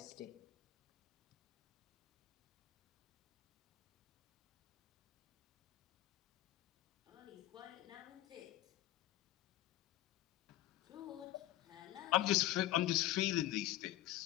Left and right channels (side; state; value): right; quieter; 15.5 dB